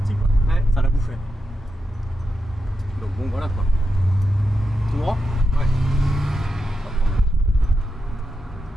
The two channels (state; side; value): normal; both; correlation 0.87